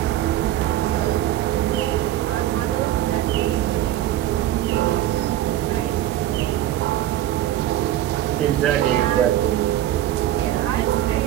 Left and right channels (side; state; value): left; quieter; 13.2 dB